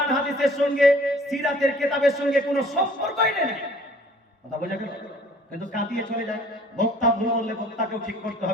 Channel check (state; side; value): normal; both; correlation 0.53